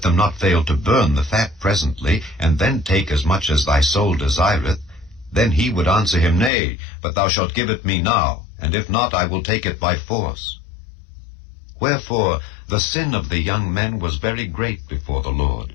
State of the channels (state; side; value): drops out; right; at 6.5 s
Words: not fail to burn the fat presently, and then take as much as thy soul desireth, then he would answer him, Nay, but thou shalt give it me now, and if not, I will take it by force. Wherefore the sin of the young men was very great before the Lord,